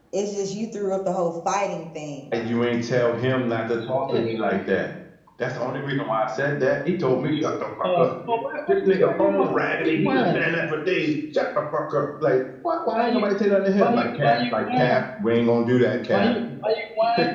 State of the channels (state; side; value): identical; both; correlation 1.00